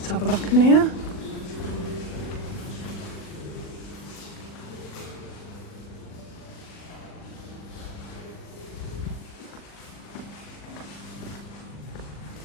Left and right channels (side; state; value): right; late; 40 ms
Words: have a look in here.